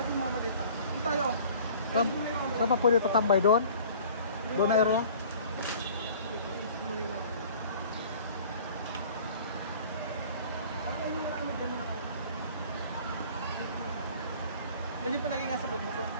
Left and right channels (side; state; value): both; inverted; correlation -0.48